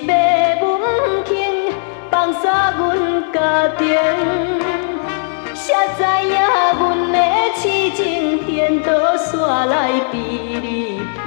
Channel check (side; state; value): right; silent; digital silence